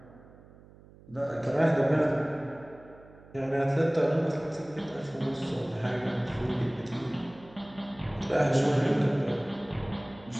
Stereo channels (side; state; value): right; noise; hum, 22 dB below the sound